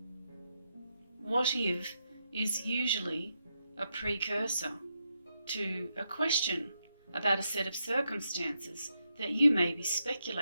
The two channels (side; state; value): both; inverted; correlation -0.83